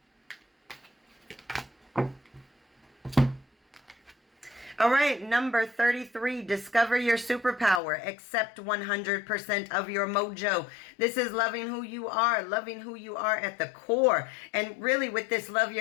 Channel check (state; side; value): drops out; right; at 7.8 s